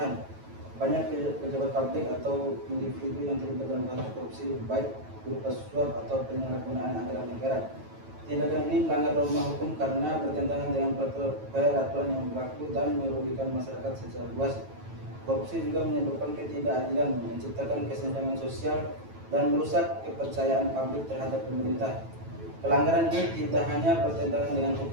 Banyak pejabat publik atau individu yang terlibat dalam kasus korupsi, baik berupa suap atau penyalahgunaan anggaran negara. Tindakan ini melanggar norma hukum karena bertentangan dengan peraturan yang berlaku dan merugikan masyarakat secara luas. Korupsi juga menyebabkan ketidakadilan, menciptakan kesenjangan sosial, dan merusak kepercayaan publik terhadap pemerintah. Pelanggaran ini tidak hanya bertentangan dengan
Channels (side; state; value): left; late; 9.1 ms